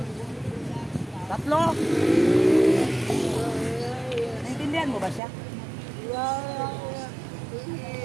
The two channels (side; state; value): left; drops out; at 5.2 s